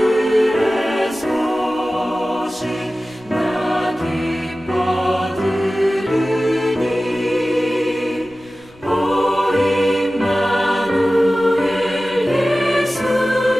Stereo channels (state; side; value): noise; left; rumble, 28 dB below the sound